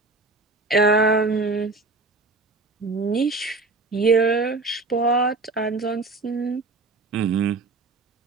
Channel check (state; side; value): quieter; left; 3.6 dB